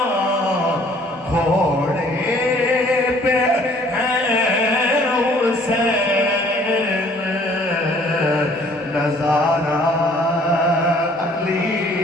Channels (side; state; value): both; normal; correlation 0.57